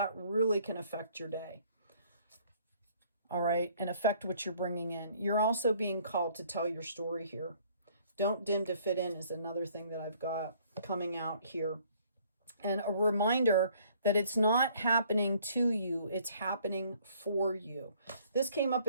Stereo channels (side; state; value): both; inverted; correlation -0.60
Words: really can affect your day. All right, and affect what you're bringing in. You're also being called to tell your story here. Don't dim to fit in is another thing that I've got coming out here. And a reminder that it's not happening to you, it's happening for you. This came up